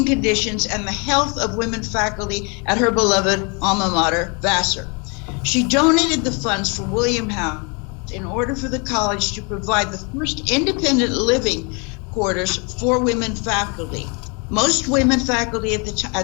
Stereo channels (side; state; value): right; quieter; 32.7 dB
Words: conditions and the health of women faculty at her beloved alma mater, Vassar. She donated the funds for William House in order for the college to provide the first independent living quarters for women faculty. Most women faculty at